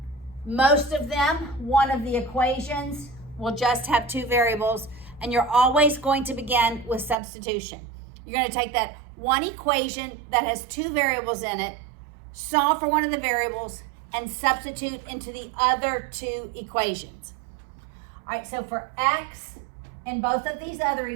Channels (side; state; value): left; drops out; at 7.2 s